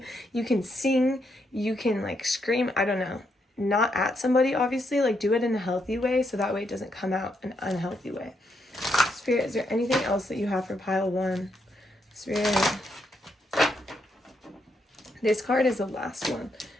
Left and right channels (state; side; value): normal; both; correlation 0.78